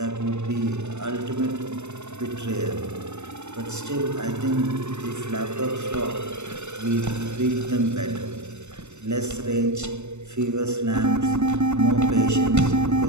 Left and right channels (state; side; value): late; left; 0.82 ms